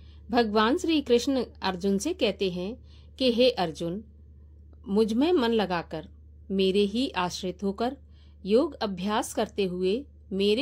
भगवान श्री कृष्ण अर्जुन से कहते हैं कि हे अर्जुन, मुझ में मन लगाकर, मेरे ही आश्रित होकर योग अभ्यास करते हुए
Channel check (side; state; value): both; identical; correlation 1.00